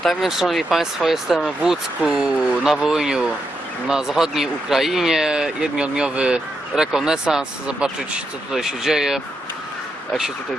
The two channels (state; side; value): normal; both; correlation 0.83